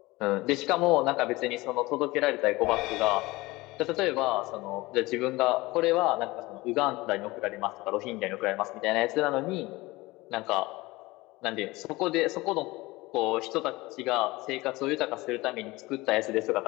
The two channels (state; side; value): quieter; right; 21.0 dB